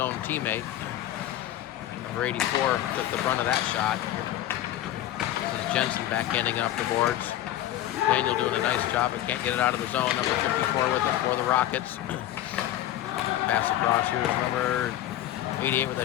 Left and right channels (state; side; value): quieter; right; 13.3 dB